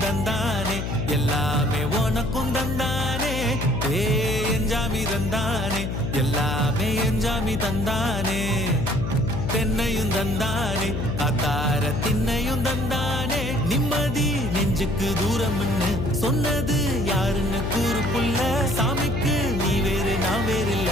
தந்தானே எல்லாமே உனக்கும் தந்தானே ஏ எஞ்சாமி தந்தானே எல்லாமே எஞ்சாமி தந்தானே தென்னையும் தந்தானே காத்தார திண்ணையும் தந்தானே நிம்மதி நெஞ்சுக்கு தூரம்னு சொன்னது யாருன்னு கூறு புள்ள சாமிக்கு நீ வேறு நான் வேறு இல்ல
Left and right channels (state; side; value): noise; left; hum, 3 dB below the sound